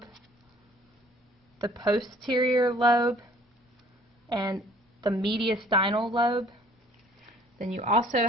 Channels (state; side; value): normal; both; correlation 0.55